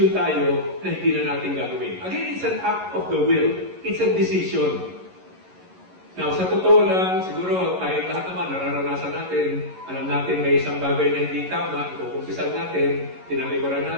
tayo na hindi na natin gagawin. Again, it's an act of the will. It's a decision. Now, sa totoo lang, siguro tayong lahat naman nararanasan natin, alam natin may isang bagay na hindi tama, ikukumpisal natin, tinalikuran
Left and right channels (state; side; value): late; left; 11 ms